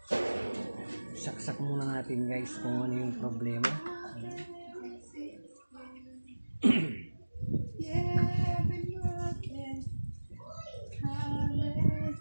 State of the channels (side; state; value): both; inverted; correlation -1.00